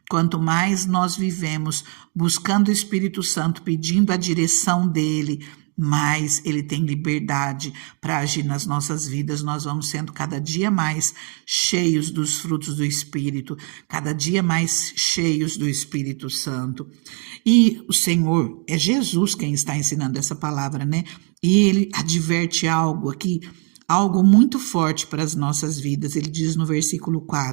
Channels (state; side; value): quieter; left; 38.5 dB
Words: Quanto mais nós vivemos buscando o Espírito Santo, pedindo a direção dele, mais ele tem liberdade para agir nas nossas vidas. Nós vamos sendo cada dia mais cheios dos frutos do Espírito, cada dia mais cheios do Espírito Santo. E o Senhor, é Jesus quem está ensinando essa palavra, né? E ele adverte algo aqui, algo muito forte para as nossas vidas. Ele diz no versículo